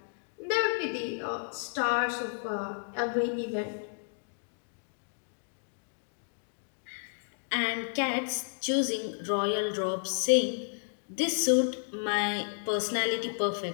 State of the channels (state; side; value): silent; right; digital silence